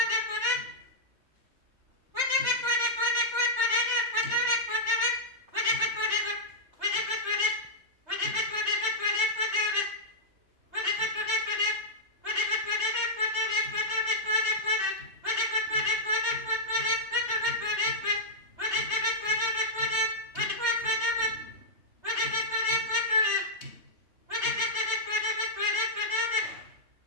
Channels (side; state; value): left; late; 3.3 ms